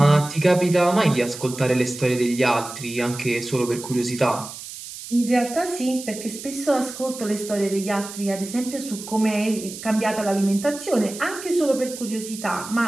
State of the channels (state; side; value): noise; right; hiss, 12 dB below the sound